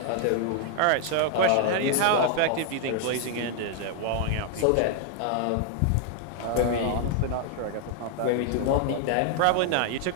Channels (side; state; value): both; different; correlation 0.00